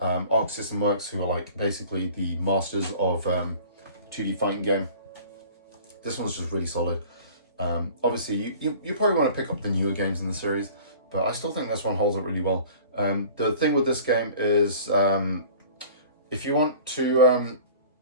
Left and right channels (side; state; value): both; inverted; correlation -0.46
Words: System Works, who are like basically the masters of 2D fighting game. This one's just really solid. Obviously, you probably want to pick up the newer games in the series, but I still think this one holds up really well. The thing with this game is if you want to